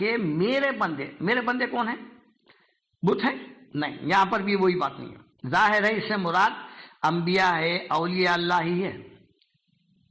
میرے بندے کون ہیں؟ بت ہیں؟ نہیں، یہاں پر بھی وہی بات نہیں ہے۔ ظاہر ہے اس سے مراد انبیاء ہے، اولیاء اللہ ہی ہے۔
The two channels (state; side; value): identical; both; correlation 1.00